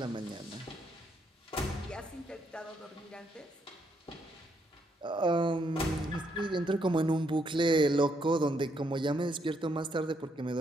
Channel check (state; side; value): normal; both; correlation 0.74